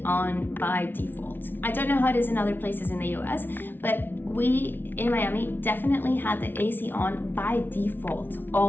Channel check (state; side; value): late; right; 0.098 ms